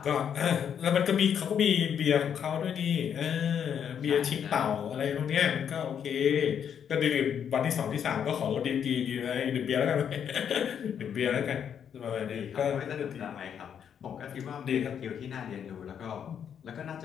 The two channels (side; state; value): right; quieter; 8.3 dB